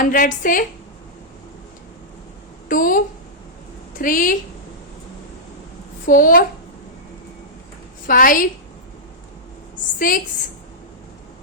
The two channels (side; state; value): both; normal; correlation -0.12